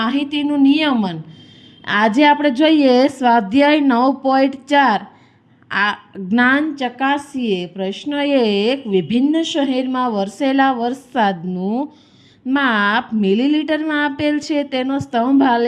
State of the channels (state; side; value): identical; both; correlation 1.00